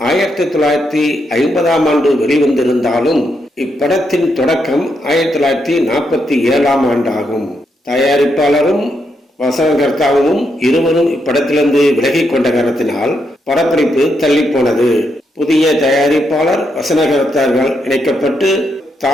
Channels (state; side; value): normal; both; correlation 0.80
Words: 1950ஆம் ஆண்டு வெளிவந்திருந்தாலும் இப்படத்தின் தொடக்கம் 1947ஆம் ஆண்டாகும். தயாரிப்பாளரும் வசனகர்த்தாவும் இருவரும் இப்படத்திலிருந்து விலகிக் கொண்ட காரணத்தினால் படப்பிடிப்பு தள்ளி போனது. புதிய தயாரிப்பாளர் வசனகர்த்தார்கள் இணைக்கப்பட்டு